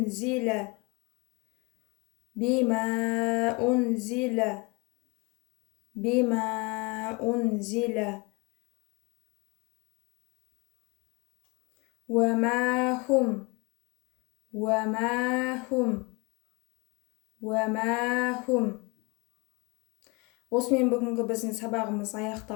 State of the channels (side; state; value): right; quieter; 28.2 dB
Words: بما أنزل بما أنزل وما هم وما هم وما هم. Осымен бүгінгі біздің сабағымыз